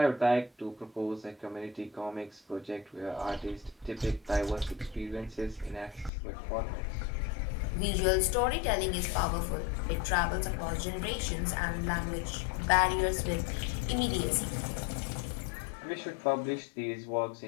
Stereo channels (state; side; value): drops out; right; at 6.1 s